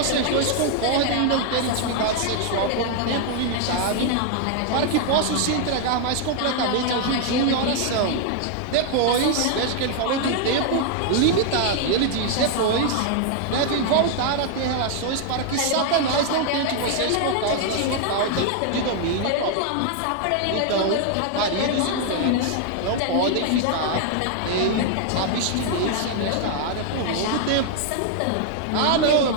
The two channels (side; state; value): both; different; correlation 0.00